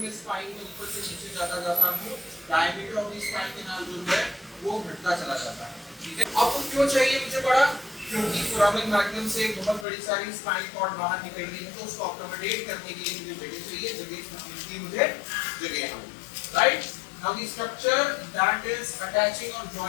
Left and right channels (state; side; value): drops out; right; at 9.9 s